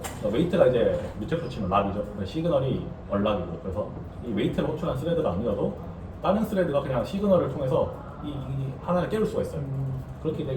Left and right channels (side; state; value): both; identical; correlation 1.00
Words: 웨이트가 이제 뮤텍스로 치면 락이죠. 시그널이 얼락이고 그래서 이 웨이트를 호출한 스레드가 아니더라도 다른 스레드가 그냥 시그널을 통해서 이 하나를 깨울 수가 있어요. 그렇게